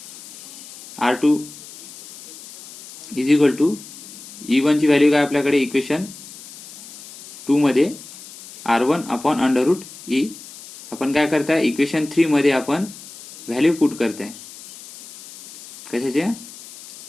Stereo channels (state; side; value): noise; left; hiss, 17 dB below the sound